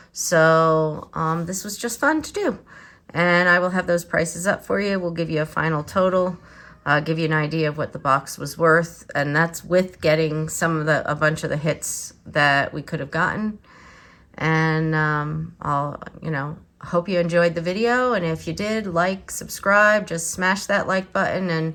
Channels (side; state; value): both; identical; correlation 1.00